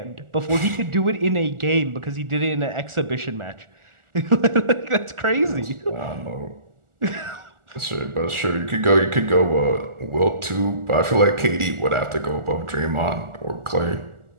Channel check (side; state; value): left; late; 1.4 ms